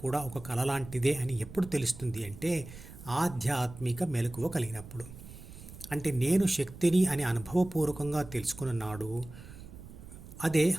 ఒక కల లాంటిదే అని ఎప్పుడు తెలుస్తుంది అంటే ఆధ్యాత్మిక మెలకువ కలిగినప్పుడు. అంటే నేను శక్తిని అని అనుభవపూర్వకంగా తెలుసుకున్న నాడు అదే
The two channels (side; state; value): right; noise; rumble, 15 dB below the sound